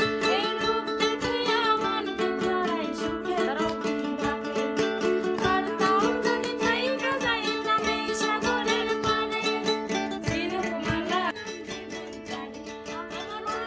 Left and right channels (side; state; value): both; identical; correlation 1.00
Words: এই রূপ দেখিয়া মন পিঞ্জরায় সুখের তোমারি ডাকে পারতাম যদি যাইতা যাইতাম এই সাগরের পারে ঝিনুক মালা আমার